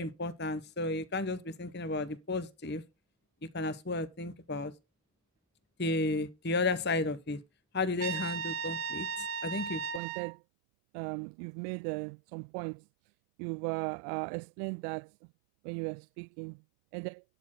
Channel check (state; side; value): drops out; left; at 10.0 s